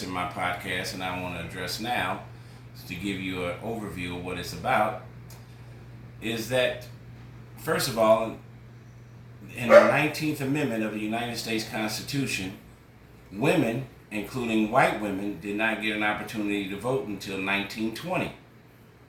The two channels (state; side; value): identical; both; correlation 1.00